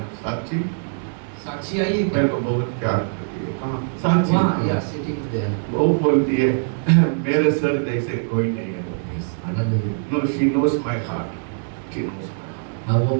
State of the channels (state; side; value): silent; left; 64 dB below the other